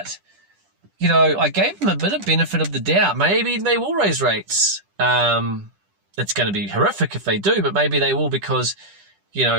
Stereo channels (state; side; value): late; left; 10 ms